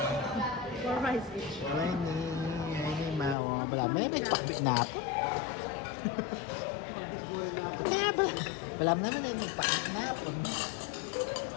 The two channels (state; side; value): drops out; right; at 3.4 s